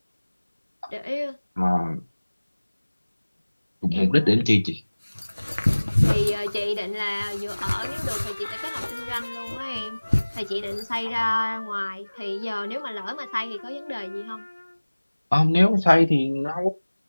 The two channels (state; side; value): inverted; both; correlation -1.00